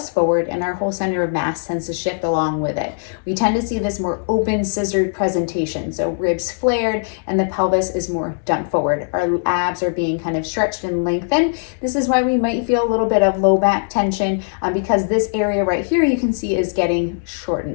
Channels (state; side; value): silent; right; digital silence